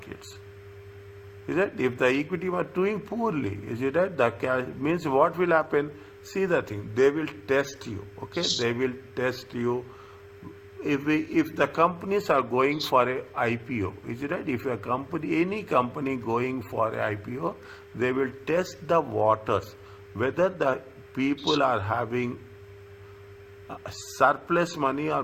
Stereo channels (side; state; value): both; identical; correlation 1.00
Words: Is it? If the equity were doing poorly, is it right? The cash means what will happen? See the thing, they will test you. Okay, they will test you. If the companies are going for a IPO, is it right? If any company going for a IPO, they will test the waters, whether the people are having surplus money or